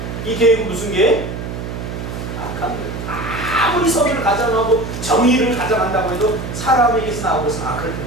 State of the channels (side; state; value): right; noise; hum, 7 dB below the sound